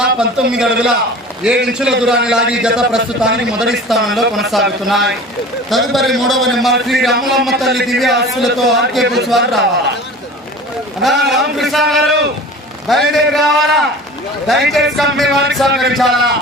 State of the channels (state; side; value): normal; both; correlation 0.39